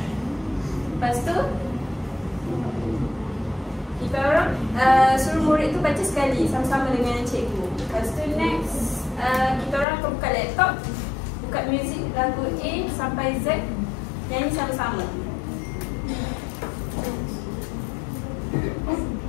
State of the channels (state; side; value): drops out; right; at 9.9 s